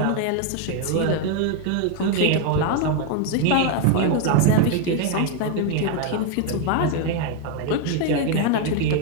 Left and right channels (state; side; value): different; both; correlation 0.01